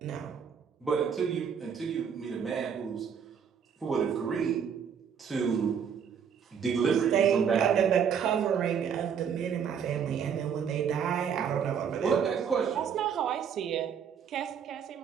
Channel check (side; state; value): left; quieter; 7.4 dB